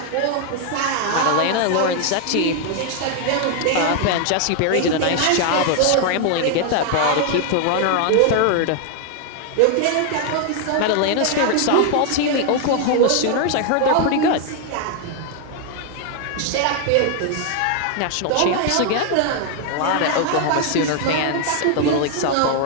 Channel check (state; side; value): different; both; correlation 0.00